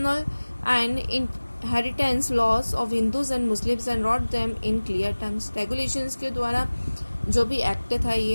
and inheritance laws of Hindus and Muslims and wrote them in clear terms. Regulations के द्वारा जो भी एक्ट था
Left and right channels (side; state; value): both; inverted; correlation -1.00